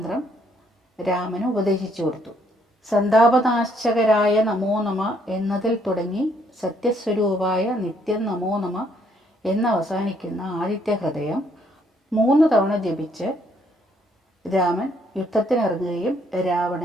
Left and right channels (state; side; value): normal; both; correlation 0.69